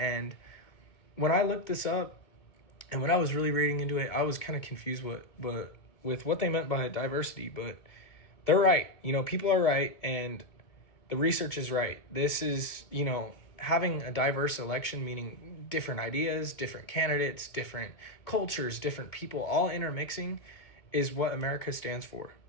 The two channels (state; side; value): late; right; 2.2 ms